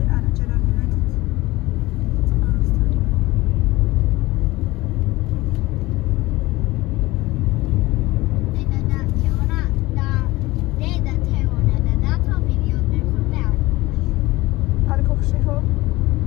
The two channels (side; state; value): right; quieter; 19.7 dB